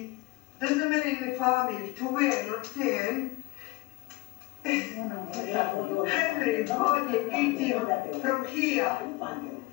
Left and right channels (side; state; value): right; quieter; 19.9 dB